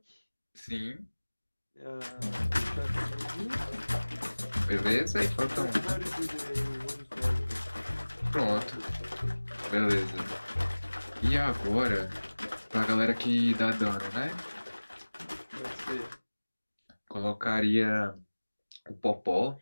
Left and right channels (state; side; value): inverted; both; correlation -1.00